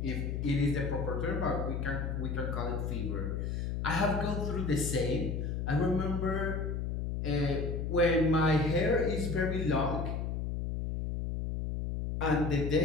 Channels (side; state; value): left; noise; hum, 2 dB below the sound